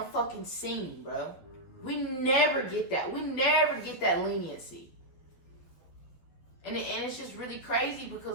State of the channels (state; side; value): late; right; 12 ms